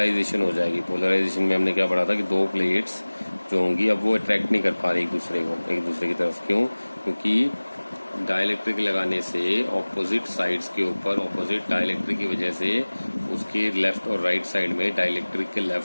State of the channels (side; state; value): both; inverted; correlation -1.00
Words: हो जाएगी। पोलराइजेशन में हमने क्या पढ़ा था कि दो प्लेट्स जो होंगी अब वो अट्रैक्ट नहीं कर पा रही एक दूसरे की तरफ। क्यों? क्योंकि डाइलेक्ट्रिक लगाने से ऑपोजिट साइड्स के ऊपर ऑपोजिट डाइलेक्ट्रिक की वजह से उसके लेफ्ट और राइट साइड में, डाइलेक्ट्रिक के